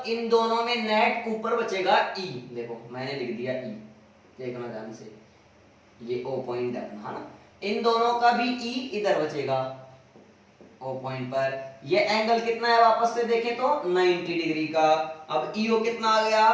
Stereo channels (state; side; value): identical; both; correlation 1.00